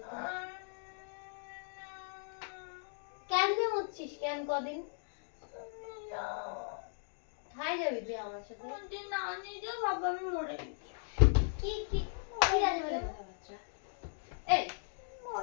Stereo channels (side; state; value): right; silent; digital silence